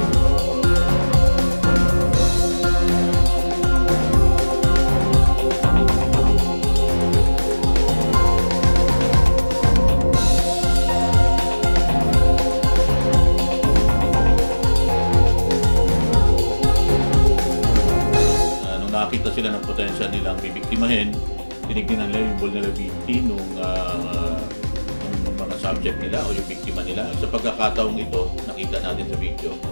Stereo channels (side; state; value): both; inverted; correlation -1.00